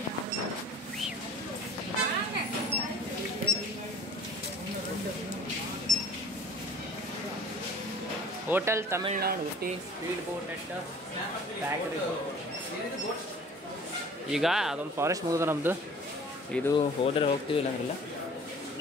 Hotel Tamil Nadu Ooty speed boat at factory. ಈಗ ಅದೊಂದು ಫಾರೆಸ್ಟ್ ಮುಗಿದ ನಮ್ಮದು. ಇದು ಹೋದರೆ ಹೋಗ್ತೀವಿ, ಇಲ್ಲಾಂದ್ರಿಲ್ಲ.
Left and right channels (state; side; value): normal; both; correlation 0.46